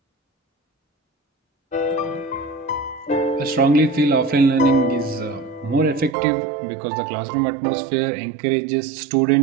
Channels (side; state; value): left; drops out; at 6.2 s